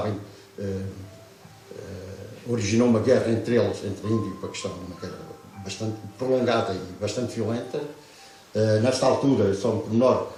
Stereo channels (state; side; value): identical; both; correlation 1.00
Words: originou uma guerra entre eles, entre a Índia e o Paquistão, uma guerra bastante prolongada e bastante violenta. Nesta altura, só um pormenor,